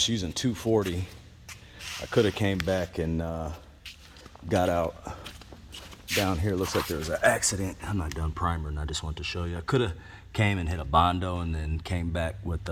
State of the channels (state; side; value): identical; both; correlation 1.00